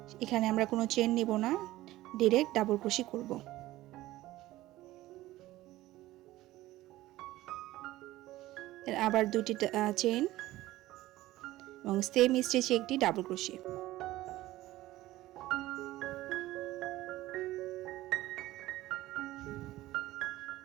এখানে আমরা কোনো চেন নিব না, ডাইরেক্ট ডাবল ক্রোশি করব। আবার 2টি চেন এবং সেম স্টিচে একটি ডাবল ক্রোশি।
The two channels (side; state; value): left; quieter; 16.5 dB